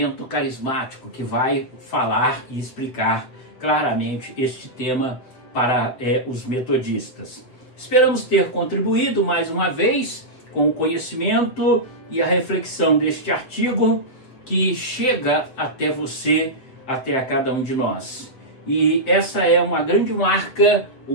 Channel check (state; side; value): late; right; 7.9 ms